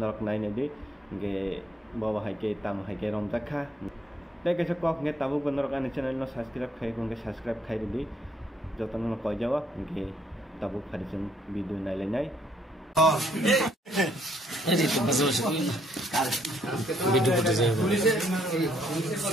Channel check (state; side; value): normal; both; correlation 0.69